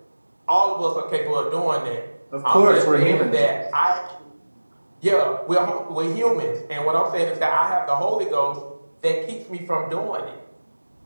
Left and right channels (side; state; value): both; inverted; correlation -1.00